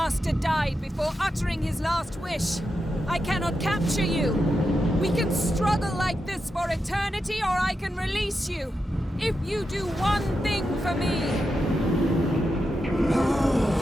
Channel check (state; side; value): normal; both; correlation 0.87